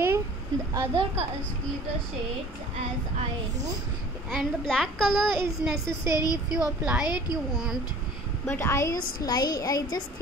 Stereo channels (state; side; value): normal; both; correlation 0.47